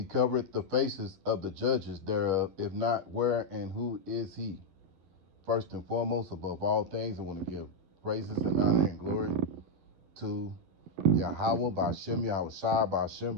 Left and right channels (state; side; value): late; left; 11 ms